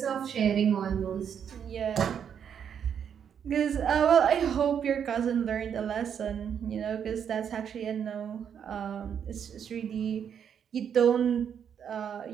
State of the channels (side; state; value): left; quieter; 8.1 dB